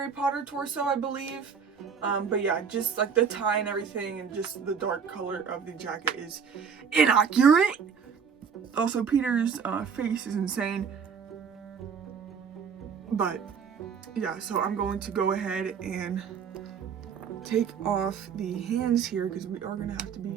Potter torso, I believe. But yeah, just the tie and everything and just the dark color of the jacket is inaccurate. Also, Peter's face is insane. But yeah, so I'm going to go ahead and take off the hands here because we are gonna have to be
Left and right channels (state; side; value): quieter; left; 6.5 dB